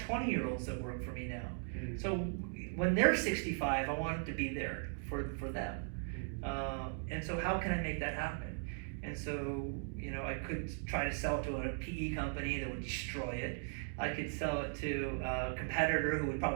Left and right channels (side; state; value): left; silent; 52 dB below the other